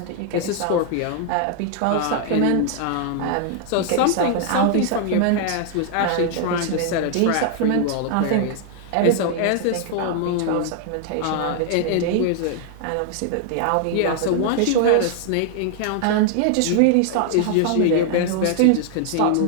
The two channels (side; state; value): both; different; correlation 0.00